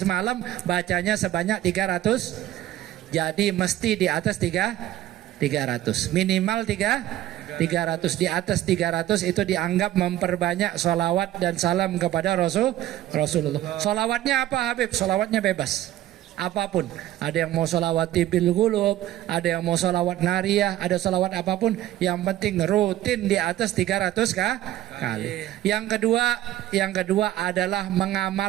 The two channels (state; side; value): quieter; left; 13.9 dB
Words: bacanya sebanyak 300. Jadi mesti di atas 300. Minimal 300. Di atas 300 itu dianggap memperbanyak sholawat dan salam kepada Rasulullah. Sholawatnya apa Habib? Sholawatnya bebas. Apapun, ada yang mau sholawat tibil gulub, ada yang mau sholawat nariyah, ada sholawat apapun, yang penting rutin di atas 300 kali. Yang kedua adalah